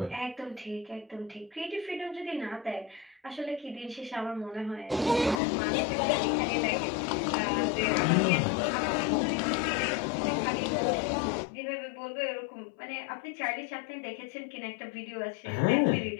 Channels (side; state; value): right; drops out; at 5.4 s